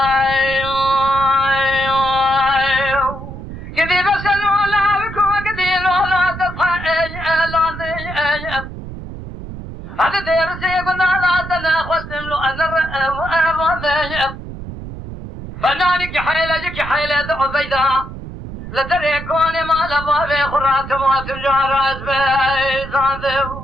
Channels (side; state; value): right; noise; rumble, 11 dB below the sound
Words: قدي بسلو لا بكو قدلو لا تطحى لا هذا درسي قلنا لا تناقصتم له أنا وأبغى فنانك حيلك حيلة عبيدة لدري كوني ما لبابي خرات ما تجار أزبي